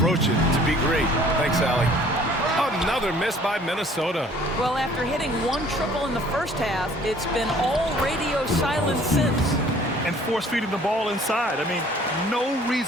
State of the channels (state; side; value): normal; both; correlation 0.54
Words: it to be great. Thanks, Allie. Another miss by Minnesota. Well, after hitting 1 triple in the first half, it's been all radio silent since. And force-feeding the ball inside. I mean, no